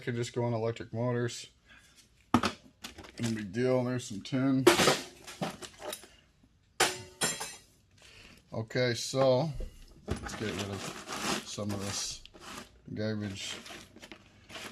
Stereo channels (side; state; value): both; identical; correlation 1.00